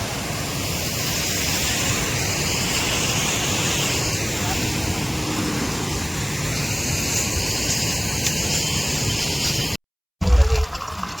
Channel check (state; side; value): identical; both; correlation 1.00